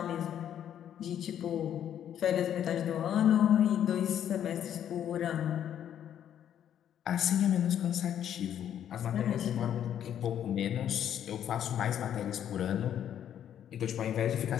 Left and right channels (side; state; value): right; quieter; 10.0 dB